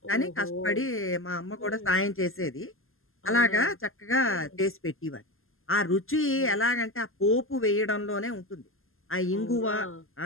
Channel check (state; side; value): late; right; 0.61 ms